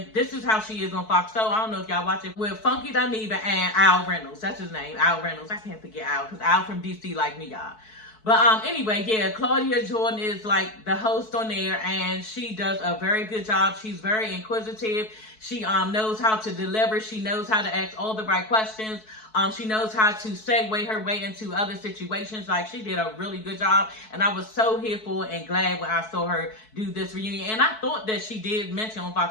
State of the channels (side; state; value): right; late; 4.6 ms